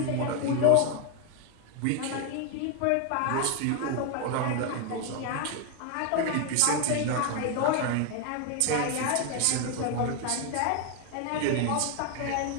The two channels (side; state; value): both; different; correlation 0.01